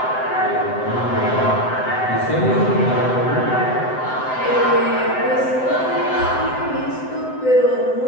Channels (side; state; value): right; late; 7.8 ms